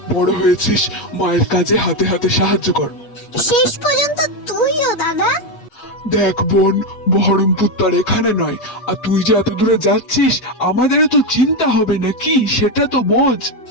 বড় হয়েছিস, মায়ের কাজে হাতে হাতে সাহায্য কর। শেষ পর্যন্ত তুইও দাদা? দেখ বোন, বহরমপুর তার এখানে নয়, আর তুই যে এত দূরে যাচ্ছিস আমাদেরও তো চিন্তা হবে নাকি, সেটা তো বোঝ।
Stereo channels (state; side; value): late; right; 8.4 ms